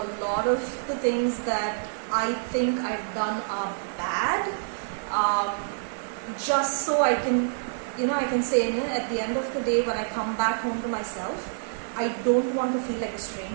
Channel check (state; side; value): silent; left; 59 dB below the other